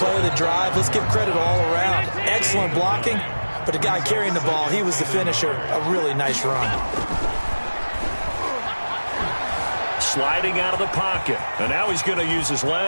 of the drive. Let's give credit all around. Excellent blocking, but the guy carrying the ball, he was the finisher. A really nice run. Sliding out of the pocket. And now he's going to use his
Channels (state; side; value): inverted; both; correlation -1.00